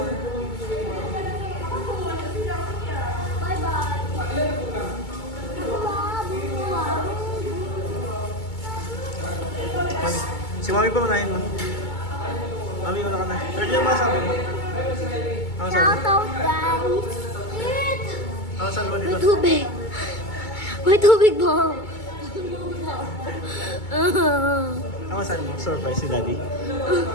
Si Mami pa manahin mo. Mami, wala ka na. 30 yung masabi mo. Ano sabi? Shout out, guys. Ano sabi mo May dito? tubig. May tubig ba? Ano sabi mo? Surprise si Daddy.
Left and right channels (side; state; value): right; late; 2.2 ms